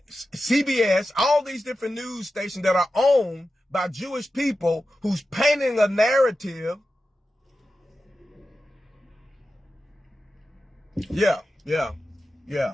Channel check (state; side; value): normal; both; correlation 0.92